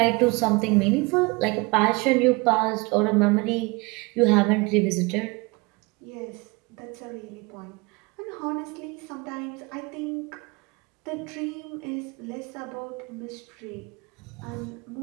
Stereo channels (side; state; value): left; quieter; 26.4 dB